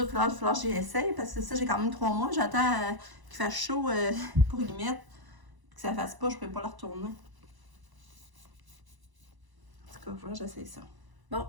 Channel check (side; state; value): left; late; 1.0 ms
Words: Il va falloir que j'y essaye. Parce que ça, j'ai quand même 3 mois. J'attends qu'il fasse chaud pour y mettre. Que ça fasse pas, je peux pas la retourner. En tout cas, voilà, j'essaye ça. Bon,